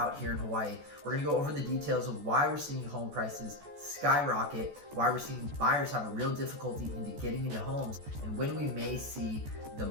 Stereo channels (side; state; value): left; late; 14 ms